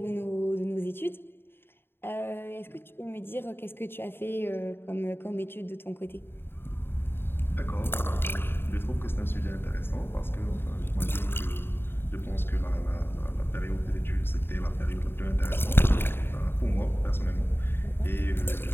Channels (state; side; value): late; right; 0.11 ms